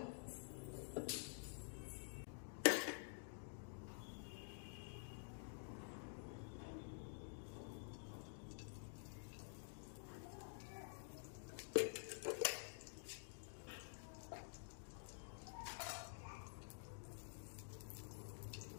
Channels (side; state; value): right; silent; digital silence